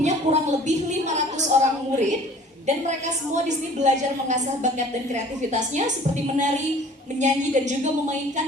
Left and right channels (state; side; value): normal; both; correlation 0.49